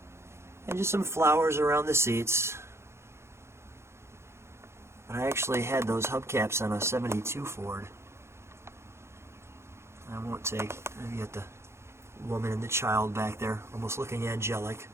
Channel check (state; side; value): late; left; 0.13 ms